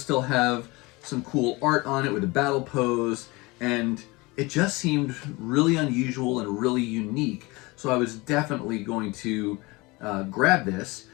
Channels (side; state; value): right; quieter; 23.9 dB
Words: still have some cool art on it with a battle pose, and it just seemed really unusual and really unique. So I was definitely going to grab this,